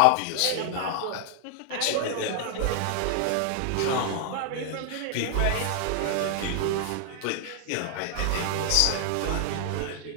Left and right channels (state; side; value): different; both; correlation 0.00